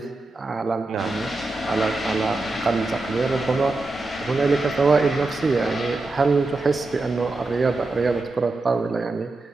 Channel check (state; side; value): quieter; left; 3.2 dB